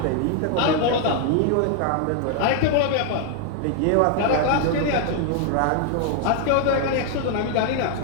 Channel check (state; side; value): different; both; correlation 0.00